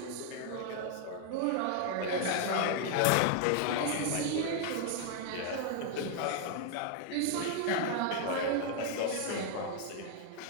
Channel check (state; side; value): different; both; correlation 0.00